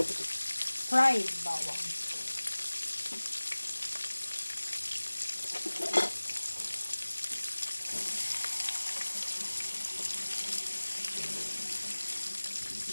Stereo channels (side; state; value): both; inverted; correlation -1.00